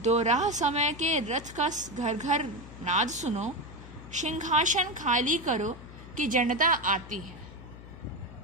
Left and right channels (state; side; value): noise; left; hum, 16 dB below the sound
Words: राह समय के रथ का घर घर नाद सुनो। सिंहासन खाली करो कि जनता आती है।